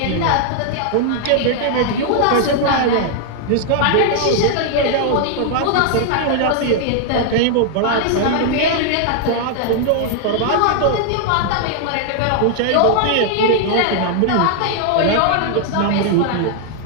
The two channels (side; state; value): both; different; correlation 0.00